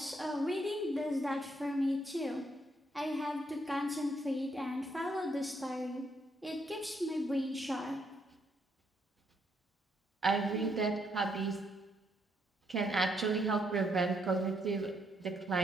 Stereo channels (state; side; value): normal; both; correlation 0.74